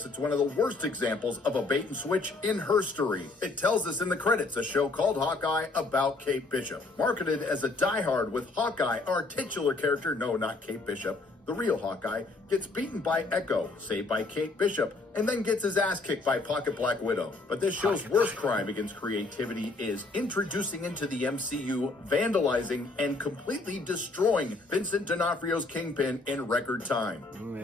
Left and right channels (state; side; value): quieter; right; 3.4 dB